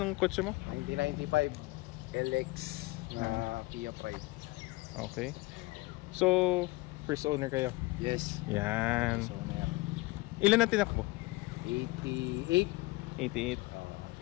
kotse mo? 1995 LX Kia Pride. Okay. So first owner kayo? Yes. Yan. First owner. Ilan ang tinakbo? 88. 88.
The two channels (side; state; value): right; quieter; 22.0 dB